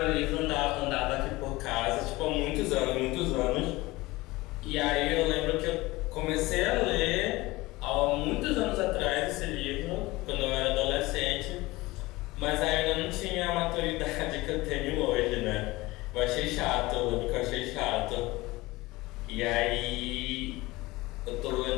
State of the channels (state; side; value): quieter; right; 20.7 dB